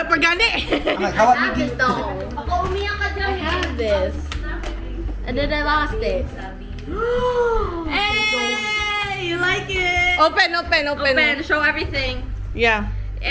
pa gani. Hawak mo. Ito. Baka umiyak ka dyan. I have this. And then I lost it. Hey! You like it? Open. Open. Show everything. Yeah.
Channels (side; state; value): both; identical; correlation 1.00